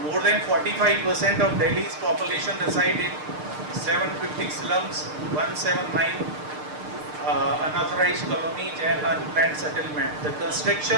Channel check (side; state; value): left; late; 6.6 ms